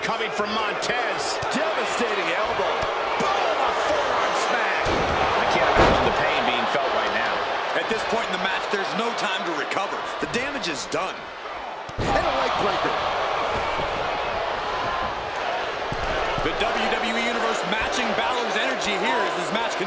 coming from Montez. Devastating elbow. Boom, a forearm smack. I can't imagine the pain being felt right now. At this point in the match, there's no time to recover. The damage is done. And a leg breaker. The WWE Universe matching Balor's energy here as this match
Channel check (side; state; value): both; identical; correlation 1.00